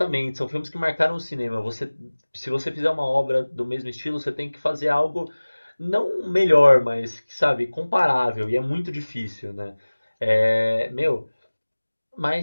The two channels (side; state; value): both; inverted; correlation -1.00